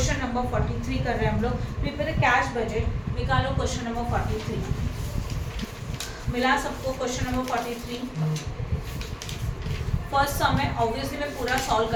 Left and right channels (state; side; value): identical; both; correlation 1.00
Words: नंबर 43 कर रहे हैं हम लोग। प्रिपेयर कैश बजट, निकालो क्वेश्चन नंबर 43। मिला सबको क्वेश्चन नंबर 43? फर्स्ट सम है, ऑब्वियसली मैं पूरा सॉल्व